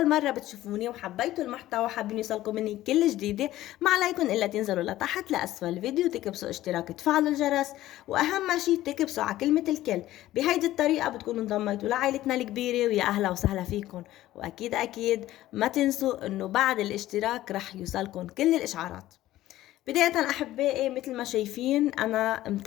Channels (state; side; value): quieter; right; 15.0 dB